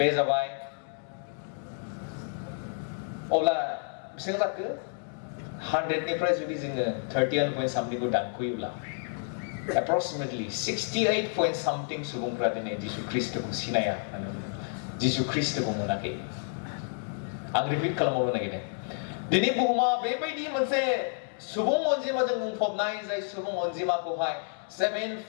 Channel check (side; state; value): right; silent; digital silence